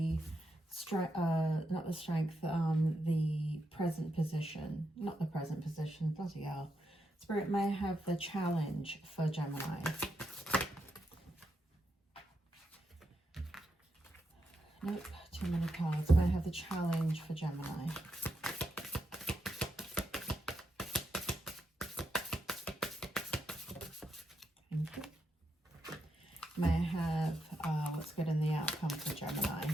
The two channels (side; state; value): both; normal; correlation 0.83